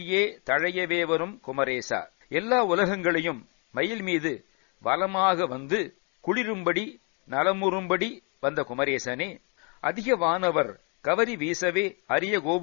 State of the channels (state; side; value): quieter; right; 35.0 dB